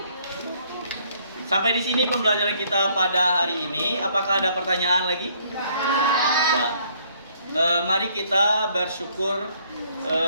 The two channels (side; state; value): both; inverted; correlation -0.64